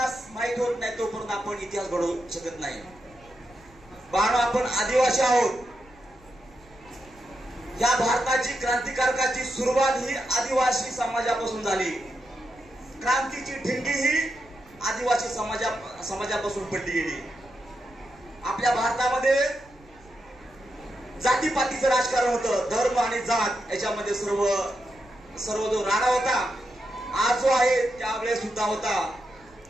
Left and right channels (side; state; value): right; noise; rumble, 26 dB below the sound